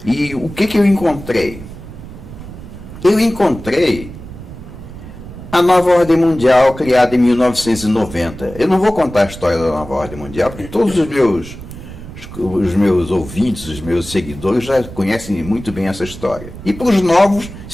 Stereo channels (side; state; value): right; noise; rumble, 14 dB below the sound